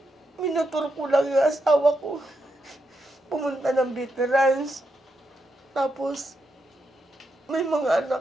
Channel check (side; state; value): both; normal; correlation 0.83